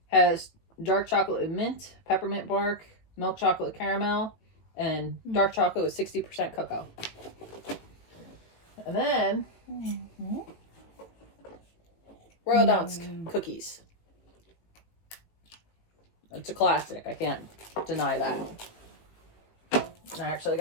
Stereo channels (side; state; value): right; late; 18 ms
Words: Has dark chocolate with mint, peppermint bark, milk chocolate with caramel, and dark chocolate with 60% cocoa. And then Royal Dansk cookies. It's a classic. I can't deny that. And I actually